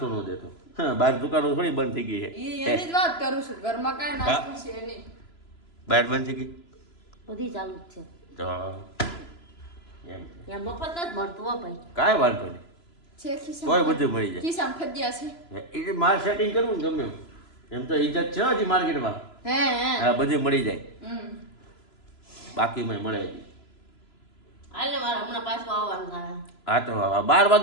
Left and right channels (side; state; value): right; late; 3.0 ms